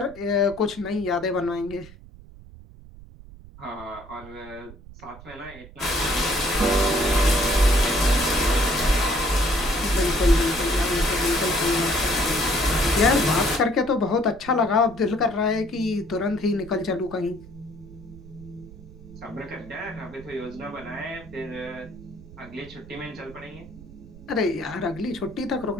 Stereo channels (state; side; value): noise; right; rumble, 19 dB below the sound